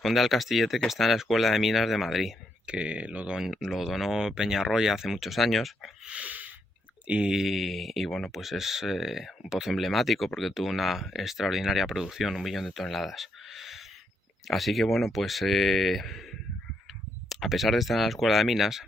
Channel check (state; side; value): normal; both; correlation 0.78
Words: al castillete que está en la Escuela de Minas de Madrid, que lo donó Peñarroya hace muchos años. Y bueno, pues es un pozo emblemático porque tuvo una extraordinaria producción, 1 millón de toneladas. Así que bueno, pues a pesar de estar en la Escuela de Minas,